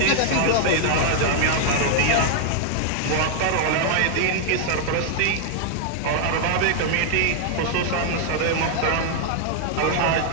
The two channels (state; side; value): different; both; correlation -0.01